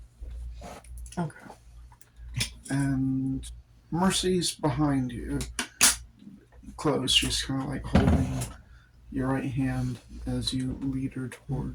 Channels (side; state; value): both; identical; correlation 1.00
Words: damn. Okay. And Mercy's behind you. Close. She's kind of like holding your right hand as you lead her